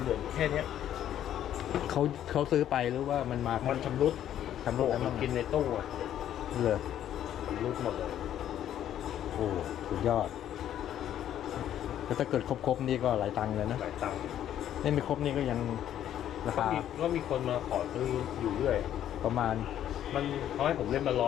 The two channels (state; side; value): quieter; right; 11.0 dB